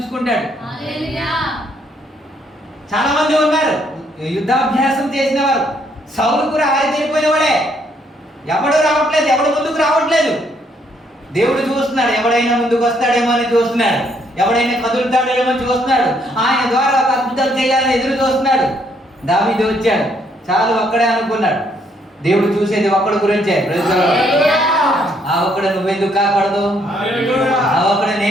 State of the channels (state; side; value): normal; both; correlation 0.70